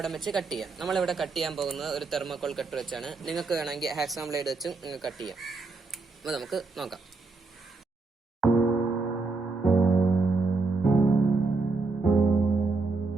വെച്ച് കട്ട് ചെയ്യാം. നമ്മളിവിടെ കട്ട് ചെയ്യാൻ പോകുന്നത് ഒരു തെർമോകോൾ കട്ടർ വെച്ചാണ്. നിങ്ങൾക്ക് വേണമെങ്കിൽ ഹാക്സാം ബ്ലേഡ് വെച്ചും നിങ്ങൾക്ക് കട്ട് ചെയ്യാം. അപ്പോൾ നമുക്ക് നോക്കാം.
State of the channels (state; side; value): quieter; left; 3.8 dB